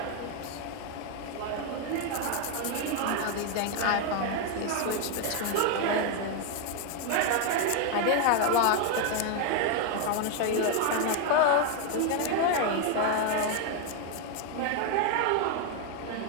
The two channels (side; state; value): both; different; correlation 0.01